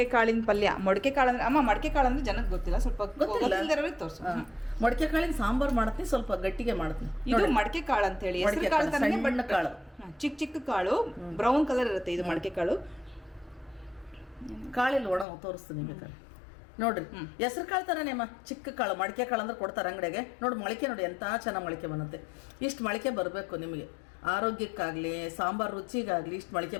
ಕಾಳಿನ ಪಲ್ಯ. ಮೊಳಕೆ ಕಾಳು ಅಂದ್ರೆ ಅಮ್ಮ, ಮೊಳಕೆ ಕಾಳು ಅಂದ್ರೆ ಜನಕ್ಕೆ ಗೊತ್ತಿಲ್ಲ, ಸ್ವಲ್ಪ ಗೊತ್ತಿಲ್ಲದವ್ರಿಗೆ ತೋರಿಸು. ಮೊಳಕೆ ಕಾಳಿನ ಸಾಂಬಾರ್ ಮಾಡ್ತೀನಿ, ಸ್ವಲ್ಪ ಗಟ್ಟಿಗೆ ಮಾಡ್ತೀನಿ. ಇದು ಮಡಕೆ ಕಾಳು ಅಂತ ಹೇಳಿ, ಹೆಸರು ಕಾಳು ತರನೇ, ಬಣ್ಣ ಕಾಳು, ಚಿಕ್ಕ ಚಿಕ್ಕ ಕಾಳು, ಬ್ರೌನ್ ಕಲರ್ ಇರುತ್ತೆ ಇದು ಮಡಕೆ ಕಾಳು. ಕಾಳಿಲ್ಲ ಒಣ ತೋರಿಸ್ತೀನಿ ಬೇಕಾದ್ರೆ ನೋಡ್ರಿ. ಹೆಸರು ಕಾಳು ತರನೇ ಅಮ್ಮ, ಚಿಕ್ಕ ಕಾಳು. ಮಡಿಕೆ ಕಾಳು ಅಂದ್ರೆ ಕೊಡ್ತಾರೆ ಅಂಗಡಿಗೆ. ನೋಡಿ ಮೊಳಕೆ ನೋಡಿ ಎಂತ ಚೆನ್ನಾಗಿ ಮೊಳಕೆ ಬರುತ್ತೆ. ಇಷ್ಟು ಮೊಳಕೆ ಬರಬೇಕು ನಿಮಗೆ, ಆರೋಗ್ಯಕ್ಕಾಗಲಿ ಸಾಂಬಾರು ರುಚಿಗಾಗಲಿ ಇಷ್ಟು ಮೊಳಕೆ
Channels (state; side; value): drops out; right; at 15.2 s